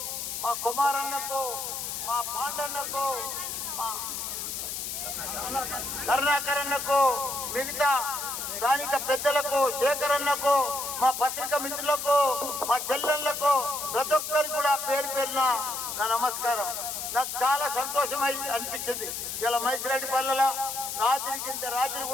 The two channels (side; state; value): left; noise; hiss, 5 dB below the sound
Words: మా కుమారన్నకు, మా పాండన్నకు, మా కరుణాకరన్నకు, మిగతా స్థానిక పెద్దలకు, శేఖరన్నకు, మా పత్రిక మిత్రులకు, మా చెల్లెళ్లకు, ప్రతి ఒక్కరికి కూడా పేరు పేరున నా నమస్కారం. నాకు చాలా సంతోషమై అనిపించింది. ఇలా మైసిరెడ్డిపల్లెల రాత్రి